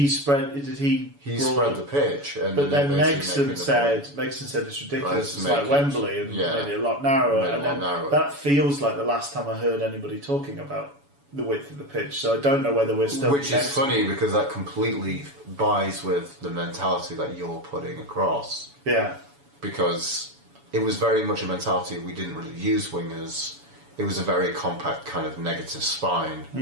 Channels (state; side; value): late; left; 7.0 ms